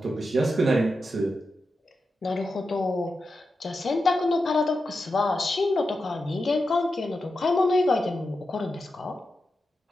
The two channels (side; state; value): both; normal; correlation 0.89